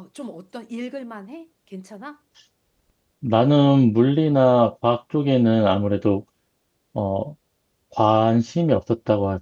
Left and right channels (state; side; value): identical; both; correlation 1.00